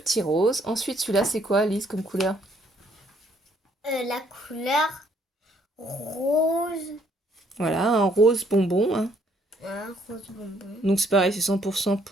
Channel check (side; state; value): both; normal; correlation 0.66